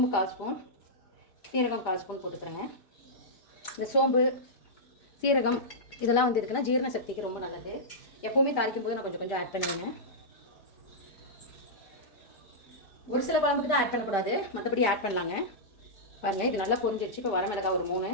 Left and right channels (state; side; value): late; right; 5.0 ms